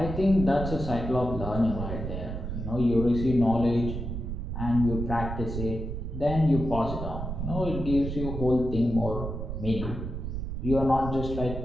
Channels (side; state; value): right; noise; rumble, 5 dB below the sound